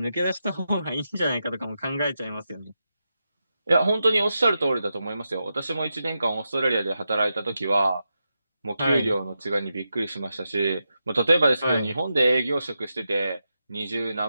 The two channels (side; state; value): both; inverted; correlation -0.88